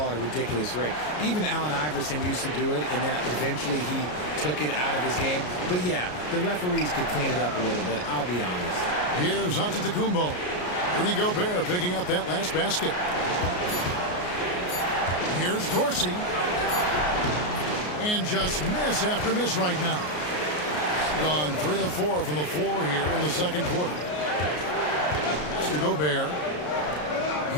at a ridiculous rate. Even Allen Iverson used to do it, and then eventually he took it out of his game. But yeah, the referees could clean it up a little bit, I'll be honest. Here's Antetokounmpo. Rudy Gobert picking up that last basket. Here's Dorsey. And just miss after miss right now. Gone 3 of 4 from the floor here in the second quarter. To Gobert.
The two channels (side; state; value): right; late; 33 ms